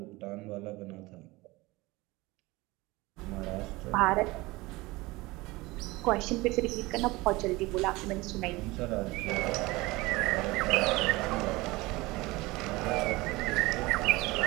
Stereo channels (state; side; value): quieter; left; 21.5 dB